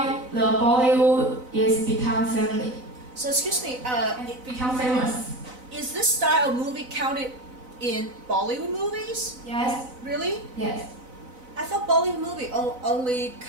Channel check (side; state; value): left; late; 4.0 ms